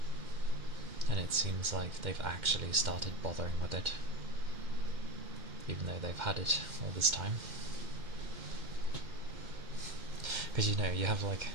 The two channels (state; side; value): late; left; 2.1 ms